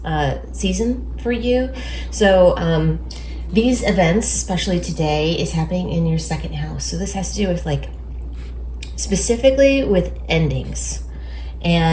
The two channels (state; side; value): identical; both; correlation 1.00